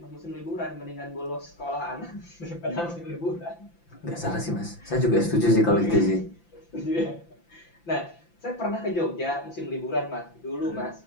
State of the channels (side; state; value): right; late; 5.9 ms